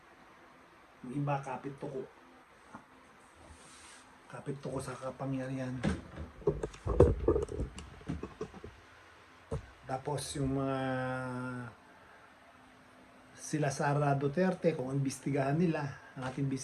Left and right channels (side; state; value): both; identical; correlation 1.00